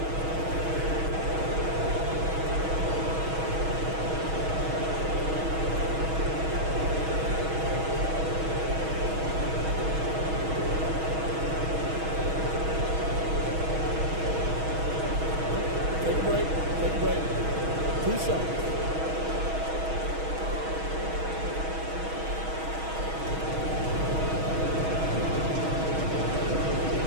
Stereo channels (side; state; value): left; late; 6.3 ms